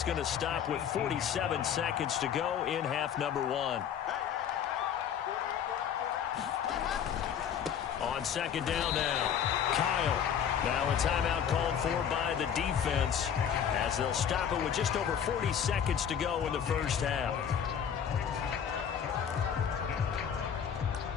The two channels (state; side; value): quieter; right; 8.4 dB